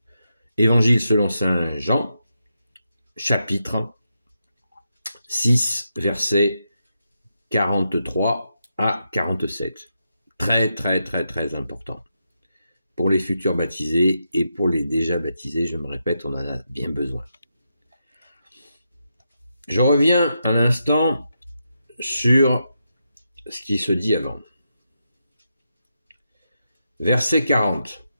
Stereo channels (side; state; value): both; inverted; correlation -0.85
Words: Évangile selon saint Jean, chapitre 6, versets 43 à 47. Très, très, très, très important. Pour les futurs baptisés et pour les déjà baptisés, je me répète, on en a bien besoin. Je reviens un instant sur ce qui se dit avant. Verset 40.